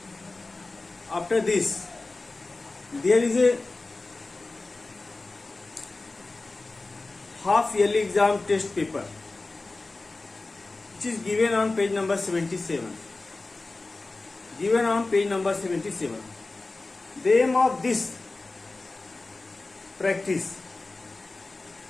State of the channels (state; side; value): quieter; right; 3.3 dB